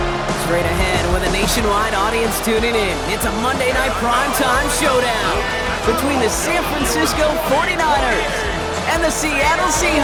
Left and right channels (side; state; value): both; identical; correlation 1.00